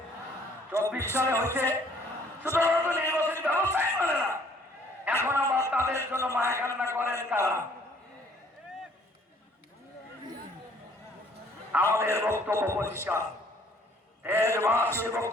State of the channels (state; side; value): normal; both; correlation 0.60